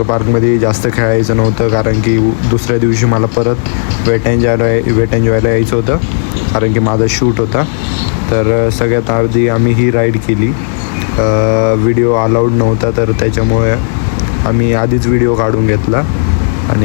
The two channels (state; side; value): silent; right; digital silence